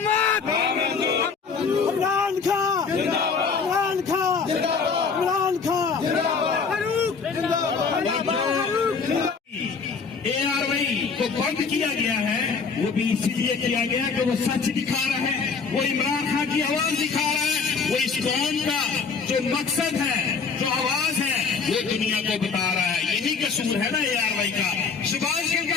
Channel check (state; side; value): quieter; right; 5.3 dB